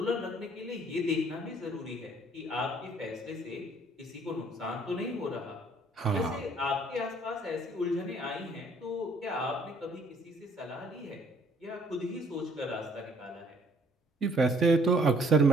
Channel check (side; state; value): both; normal; correlation 0.61